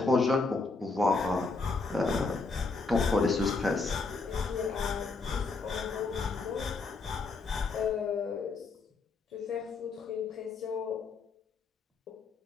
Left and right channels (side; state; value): right; quieter; 4.0 dB